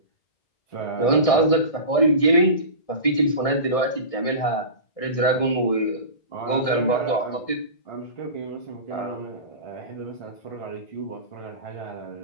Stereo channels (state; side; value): late; right; 1.6 ms